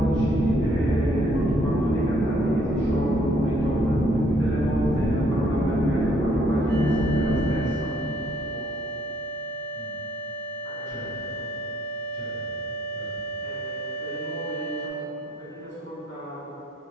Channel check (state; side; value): normal; both; correlation 0.66